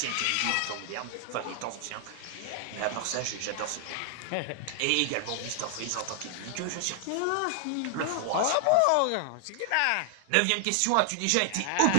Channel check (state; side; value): different; both; correlation 0.00